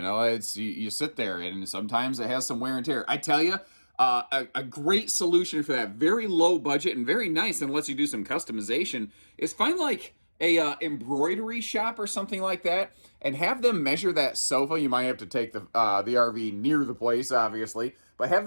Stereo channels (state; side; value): inverted; both; correlation -1.00